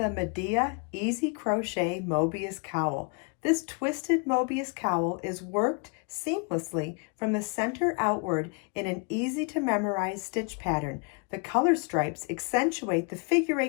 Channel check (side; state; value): right; quieter; 33.8 dB